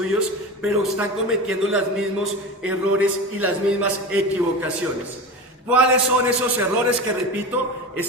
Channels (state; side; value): normal; both; correlation 0.28